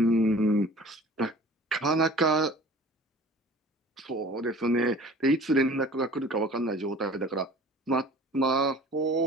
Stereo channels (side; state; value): both; normal; correlation 0.45